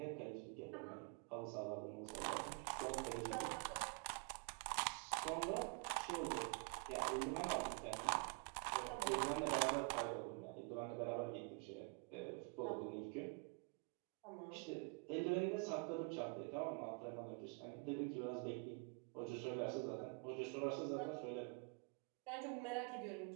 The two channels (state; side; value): quieter; left; 34.1 dB